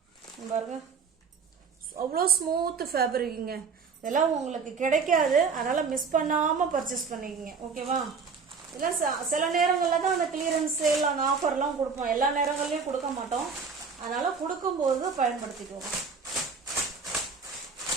பாருங்க, அவ்வளோ ஸ்மூத் ஃபேப்ரிக்குங்க. இதெல்லாம் உங்களுக்கு கிடைக்காது, அதனால மிஸ் பண்ணாம பர்ச்சேஸ் பண்ணிக்கங்க. ஓகேவா? இதெல்லாம் சில நேரங்களில் தான் அந்த கிளியரன்ஸ் சேல், அந்த ஆஃபர்லாம் கொடுப்போம். எல்லா நேரங்கள்லையும் கொடுக்க மாட்டோம். அதனால கொடுக்கும்போது பயன்படுத்திக்கோங்க.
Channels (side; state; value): left; quieter; 5.3 dB